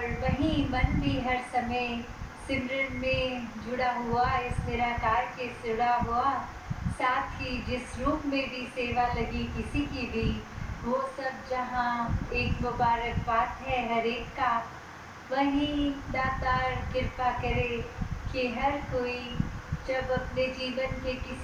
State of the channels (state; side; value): identical; both; correlation 1.00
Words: वहीं मन भी हर समय सिमरन में जुड़ा हुआ, इस निराकार के जुड़ा हुआ, साथ ही जिस रूप में भी सेवा लगी किसी की भी, वो सब जहाँ एक मुबारक बात है हर एक का। वहीं दातार कृपा करे कि हर कोई जब अपने जीवन के